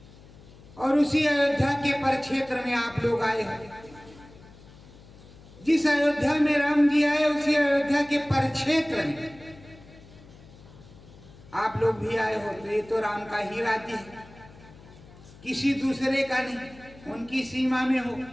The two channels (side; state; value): left; noise; hum, 22 dB below the sound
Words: और उसी अयोध्या के परिक्षेत्र में आप लोग आए हैं। जिस अयोध्या में राम जी आए उसी अयोध्या के परिक्षेत्र में आप लोग भी आए हो। तो ये तो राम का ही राज्य है, किसी दूसरे का नहीं, उनकी सीमा में हो।